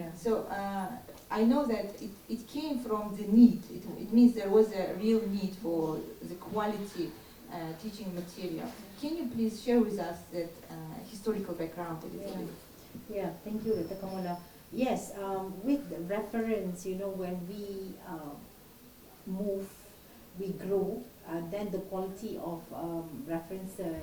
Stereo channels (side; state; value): both; identical; correlation 1.00